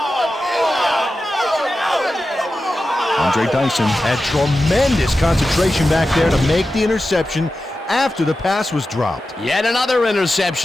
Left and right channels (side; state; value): both; normal; correlation 0.92